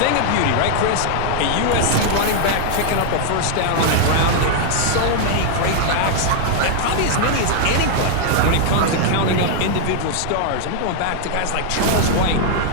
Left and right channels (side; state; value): both; different; correlation 0.00